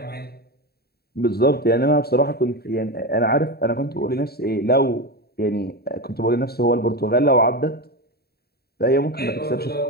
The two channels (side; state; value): right; late; 0.46 ms